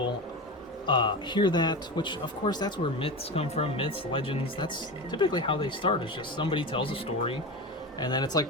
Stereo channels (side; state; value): both; normal; correlation 0.24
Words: hear that, which of course that's where myths come from. Myths, legends, that's typically how they start. It's just somebody tells a story, and then it's like